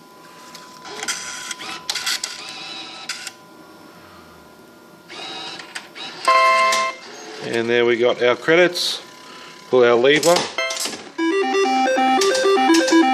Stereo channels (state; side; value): identical; both; correlation 1.00